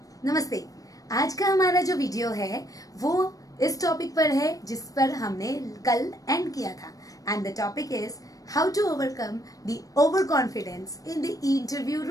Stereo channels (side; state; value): right; late; 0.17 ms